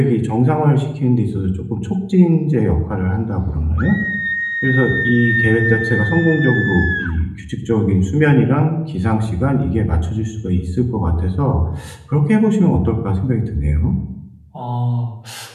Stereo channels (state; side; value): identical; both; correlation 1.00